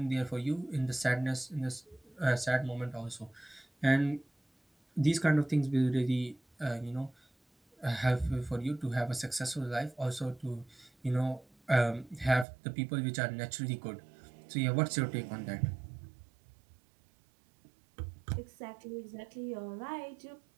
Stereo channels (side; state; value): left; drops out; at 12.5 s